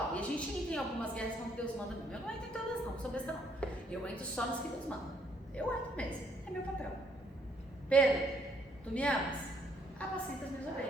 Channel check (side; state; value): both; normal; correlation 0.69